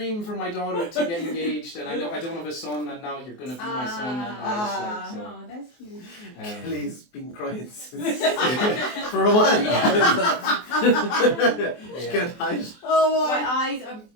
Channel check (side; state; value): right; late; 24 ms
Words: for my daughter to get engaged, and I don't have a son, and now you're gonna be my son, and all this like so. Oh, that's cute. Kelly's been crying since for a while. She can't hide. Oh My my eyes are